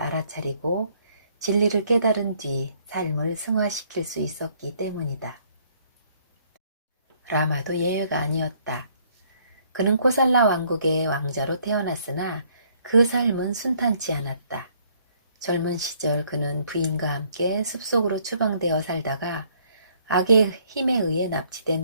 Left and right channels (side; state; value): both; inverted; correlation -0.65